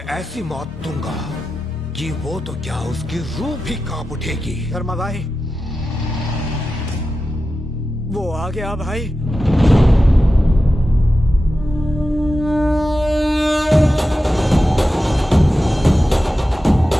ऐसी मौत दूंगा कि वो तो क्या उसकी रूह भी कांप उठेगी। धर्मा भाई, वो आ गया भाई।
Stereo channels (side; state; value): both; normal; correlation 0.92